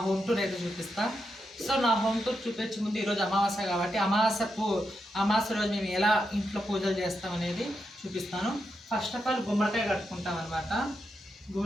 హోమ్ టూర్ అయితే చూపిస్తా. సో నా హోమ్ టూర్ చూపించే ముందు ఈరోజు అమావాస్య కాబట్టి అమావాస్య రోజు మేము ఎలా ఇంట్లో పూజలు చేస్తాం అనేది చూపిస్తాను. ఫస్ట్ ఆఫ్ ఆల్ గుమ్మడికాయ కట్టుకుంటాం అనమాట.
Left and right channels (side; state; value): both; normal; correlation 0.85